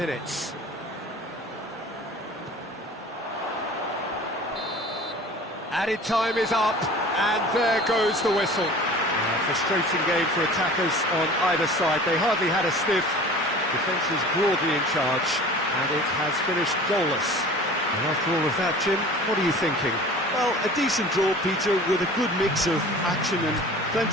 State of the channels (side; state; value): both; normal; correlation 0.42